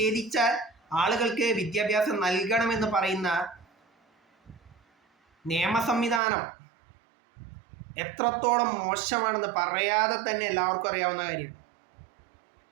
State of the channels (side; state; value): left; drops out; at 6.2 s